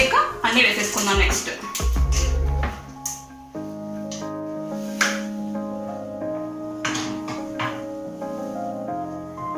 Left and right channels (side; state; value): both; identical; correlation 1.00